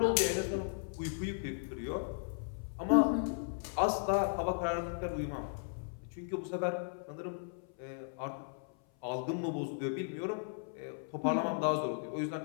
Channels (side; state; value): right; silent; 54 dB below the other